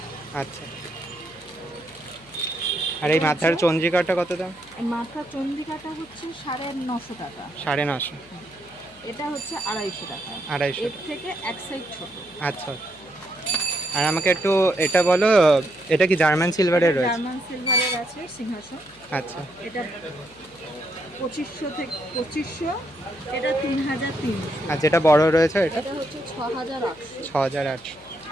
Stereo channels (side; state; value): left; noise; hum, 27 dB below the sound